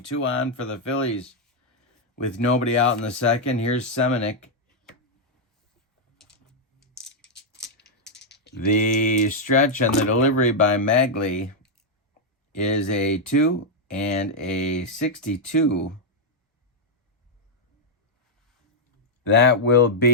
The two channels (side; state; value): both; normal; correlation -0.03